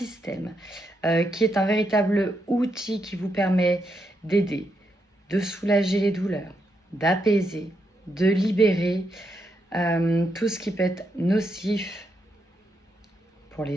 qui est un véritable outil qui vous permet d'aider, de soulager les douleurs, d'apaiser, de libérer tout ce qui peut être nocif pour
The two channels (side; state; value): both; normal; correlation 0.81